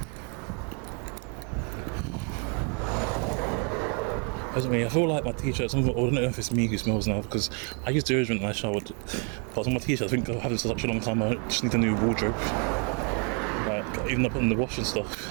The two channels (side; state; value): left; quieter; 36.8 dB